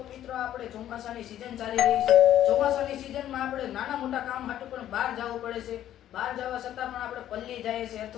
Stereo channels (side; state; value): right; quieter; 11.8 dB